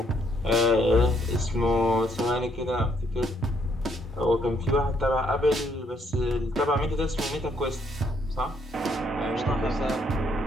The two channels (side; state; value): both; normal; correlation 0.71